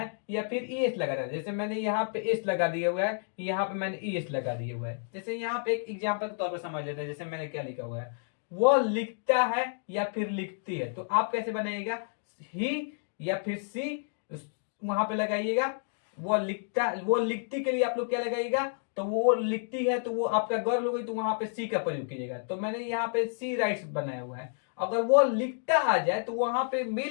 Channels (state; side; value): silent; right; digital silence